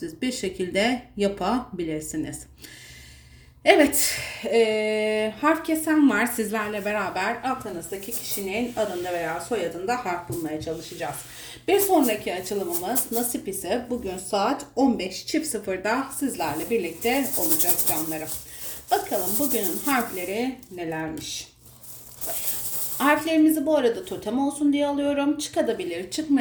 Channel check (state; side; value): identical; both; correlation 1.00